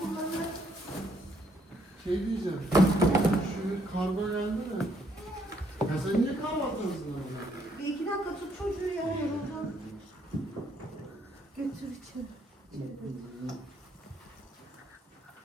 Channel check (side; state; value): both; normal; correlation 0.70